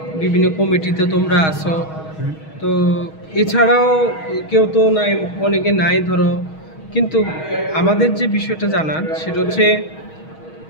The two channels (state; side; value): late; right; 6.3 ms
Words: বিভিন্ন কমিটিতে তোমরা আসো, তো এছাড়াও কেউ তো নাই, অনেকে নাই ধরো, কিন্তু আমাদের যে বিষয়টা জানার সেটা হচ্ছে